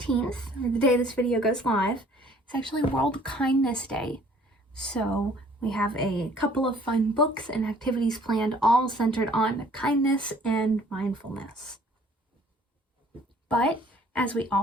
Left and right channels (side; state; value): both; normal; correlation 0.56